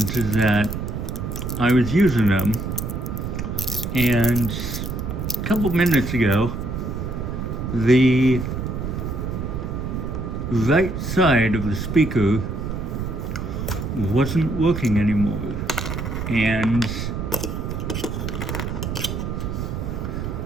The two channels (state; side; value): noise; right; rumble, 4 dB below the sound